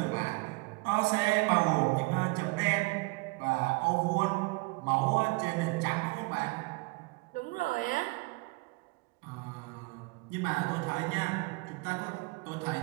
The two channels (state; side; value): quieter; left; 26.9 dB